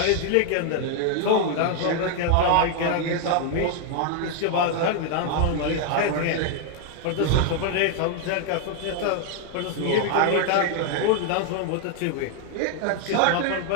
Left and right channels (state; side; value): different; both; correlation 0.00